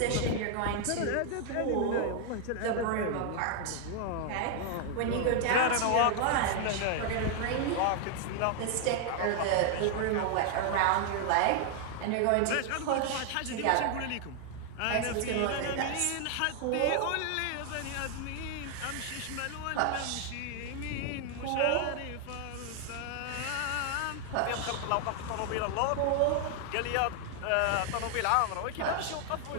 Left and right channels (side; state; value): both; different; correlation 0.00